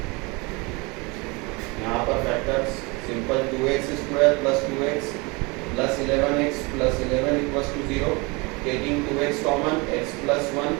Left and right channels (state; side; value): quieter; left; 27.3 dB